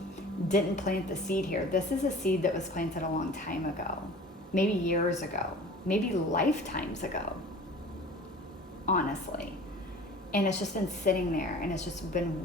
didn't plant the seed here. This is a seed that was planted a long time ago, maybe years ago, maybe lifetimes ago, honestly. And it's just been sitting there and it's just been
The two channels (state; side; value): normal; both; correlation 0.42